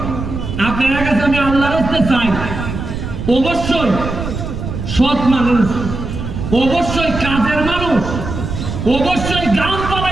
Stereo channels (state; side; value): noise; right; rumble, 6 dB below the sound